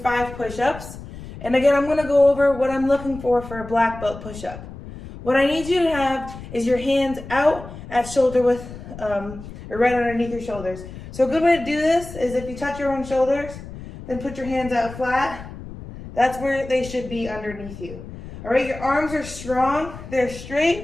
push-ups. And again, I'm gonna go over what I'm looking for a black belt push-up. What I need you to have is your hands out at shoulder width, or right underneath your shoulders. So a good way to do this is if you touch your own shoulders, then put your hands out flat. That's where they should be underneath you. All right, your arms are strong, they're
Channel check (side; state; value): left; noise; rumble, 13 dB below the sound